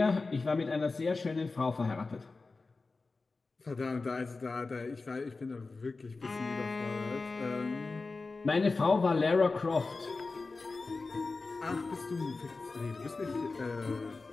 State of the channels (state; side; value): quieter; right; 3.8 dB